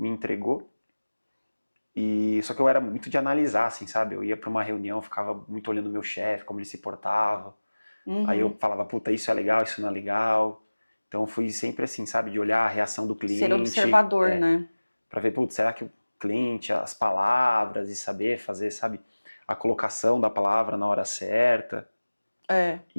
entregou, e só que eu era muito de analisar, assim, sabe? Eu ia para uma reunião, ficava muito olhando o meu chefe, como ele se portava. Aí eu falava, puta, isso é legal, isso não é legal. Então eu fui sempre assim, sabe? De olhar a reação do cliente. Ser observador, né? Pra ver, putz, será que o cliente, as palavras e saber fazer, sabe? A colocação da palavra na hora certa. É.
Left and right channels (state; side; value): inverted; both; correlation -1.00